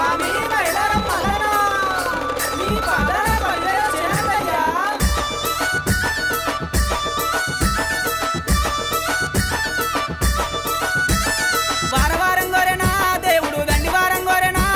మైలారం మల్లన నీ పాదాల పల్లెల చేరయ్యా వార వారం గోరెనా దేవుడు దండి వారం గోరెనా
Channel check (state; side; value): identical; both; correlation 1.00